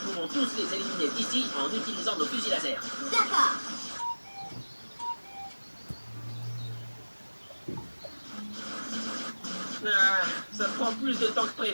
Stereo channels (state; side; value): inverted; both; correlation -1.00